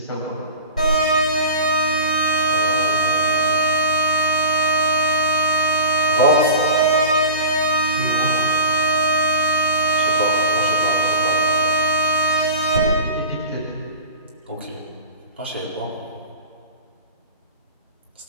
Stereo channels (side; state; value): both; inverted; correlation -0.33